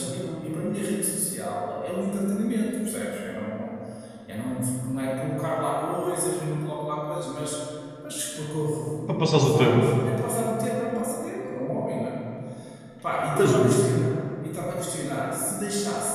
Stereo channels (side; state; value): both; identical; correlation 1.00